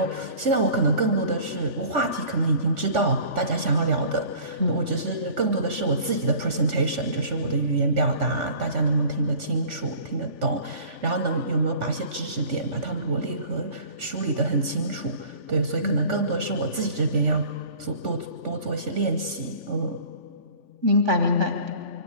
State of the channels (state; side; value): late; left; 3.5 ms